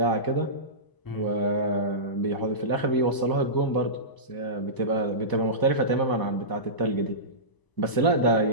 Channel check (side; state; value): right; late; 1.0 ms